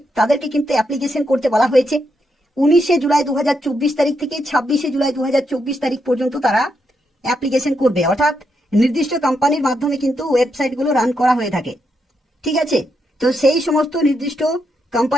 তাদেরকে কিন্তু অ্যাপ্লিকেশন করতে বলা হয়েছে। 19শে জুলাই 2024 তারিখ থেকে 26শে জুলাই 2024 তারিখ পর্যন্ত তারা অ্যাপ্লিকেশন করবে। অর্থাৎ নির্দিষ্ট কোম্পানির মাধ্যমে কিন্তু ওয়েবসাইটগুলো রান করা হয়ে থাকে। ঠিক আছে, তো সেই সমস্ত নির্দিষ্ট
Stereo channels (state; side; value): normal; both; correlation 0.81